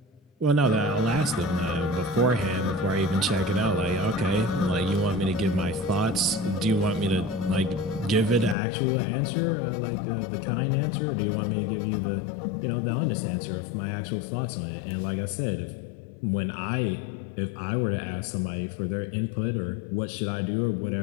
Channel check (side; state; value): right; drops out; at 8.6 s